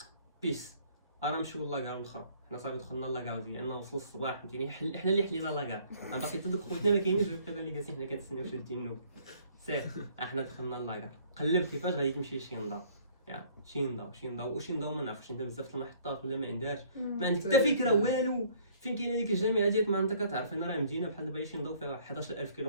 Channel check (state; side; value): inverted; both; correlation -0.58